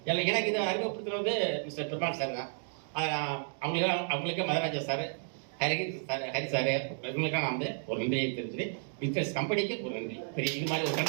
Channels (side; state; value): left; silent; 56 dB below the other